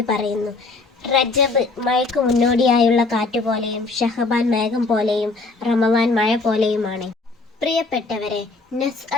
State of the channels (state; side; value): quieter; right; 3.6 dB